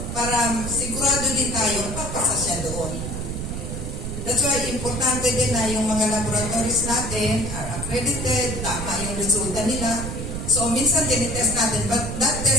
para sigurado din tayo, papasa siya doon. That's why importante din na yung mga laboratories natin are accredited, tama yung resulta nila. So minsan tinitest natin, but that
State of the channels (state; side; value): noise; right; rumble, 5 dB below the sound